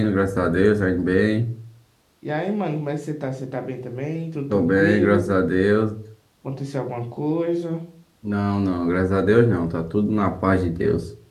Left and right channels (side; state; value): both; identical; correlation 1.00